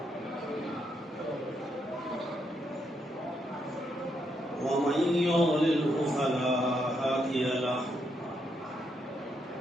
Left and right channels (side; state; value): both; normal; correlation 0.78